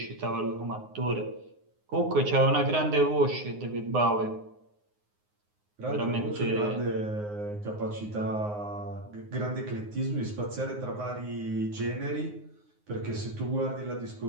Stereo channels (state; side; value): late; left; 9.6 ms